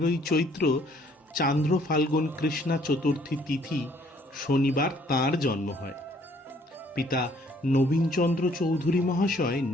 চৈত্র চান্দ্র ফাল্গুন কৃষ্ণা চতুর্থী তিথি শনিবার তাঁর জন্ম হয়। পিতা নবীনচন্দ্র চৌধুরী মহাশয়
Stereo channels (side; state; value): both; normal; correlation 0.62